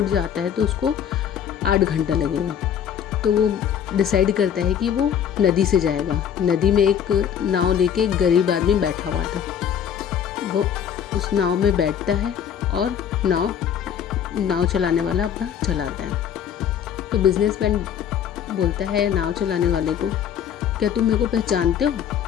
जाता है तो उसको 8 घंटा लगेगा। तो वो डिसाइड करता है कि वो नदी से जाएगा। नदी में एक नाव लेके एक गरीब आदमी बैठा हुआ था। वो उस नाव में बैठता है और नाव चलाने वाला अपना चलाता है। तो बिजनेसमैन बोलता है नाव चलाने वाले को, क्या तुम मेरे को पहचानते हो?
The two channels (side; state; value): right; quieter; 8.8 dB